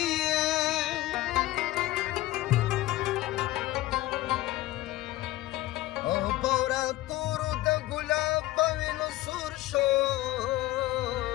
او بورا تورو د ګلاب په وینو سور شو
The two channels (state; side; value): quieter; right; 16.7 dB